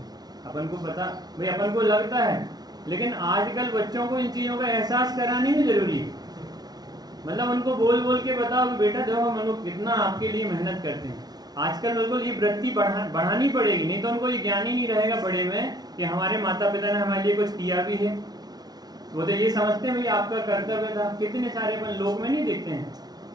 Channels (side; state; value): left; late; 0.19 ms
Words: अपन को पता भाई, अपन को लगता है, लेकिन आजकल बच्चों को इन चीज़ों का एहसास करानी भी जरूरी है। मतलब उनको बोल बोल के बताओ कि बेटा देखो हम लोग कितना आपके लिए मेहनत करते हैं। आजकल बिल्कुल ये वृत्ति बढ़ानी पड़ेगी, नहीं तो उनको ये ज्ञान ही नहीं रहेगा बड़े में कि हमारे माता पिता ने हमारे लिए कुछ किया भी है। वो तो ये समझते हैं भाई आपका कर्तव्य था। कितने सारे अपन लोग में नहीं देखते हैं,